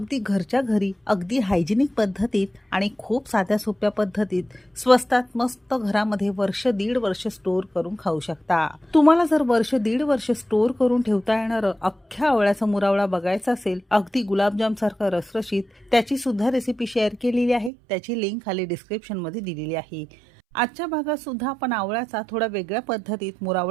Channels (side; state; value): left; drops out; at 17.7 s